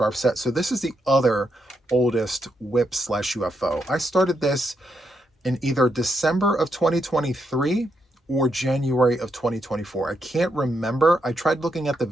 set. So this is the other oldest WIPS/UFO. I started this in either December of 2023 or January of 2024. I can't remember. I tried looking at the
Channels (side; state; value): both; normal; correlation 0.80